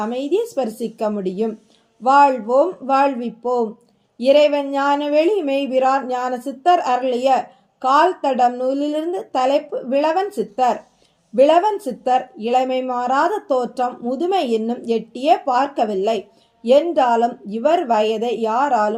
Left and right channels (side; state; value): both; identical; correlation 1.00